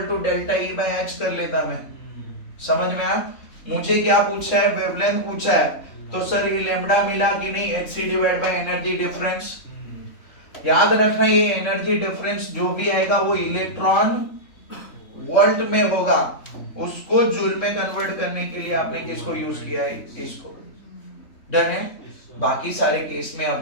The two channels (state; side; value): late; right; 3.5 ms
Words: to delta E by H कर लेता मैं। समझ में आया? मुझे क्या पूछा है? वेवलेंथ पूछा है। तो सर ये लैम्डा मिला कि नहीं? hc divide by energy difference. याद रखना ये एनर्जी डिफरेंस जो भी आएगा वो इलेक्ट्रॉन वोल्ट में होगा, उसको जूल में कन्वर्ट करने के लिए आपने किसको यूज किया है? इसको। डन है? बाकी सारे केस में